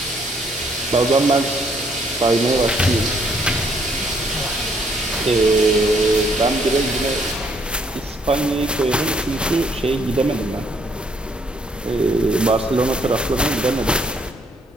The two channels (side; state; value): both; normal; correlation 0.68